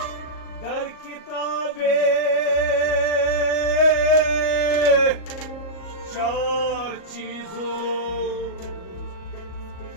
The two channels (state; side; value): late; right; 38 ms